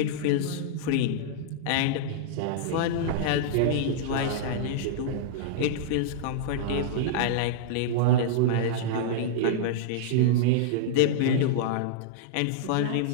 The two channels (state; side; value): different; both; correlation -0.02